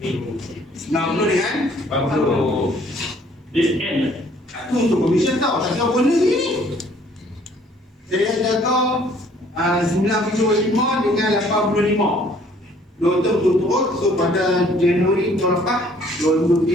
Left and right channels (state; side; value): normal; both; correlation 0.59